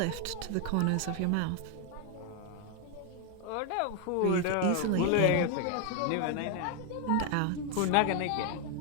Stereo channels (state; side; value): different; both; correlation 0.01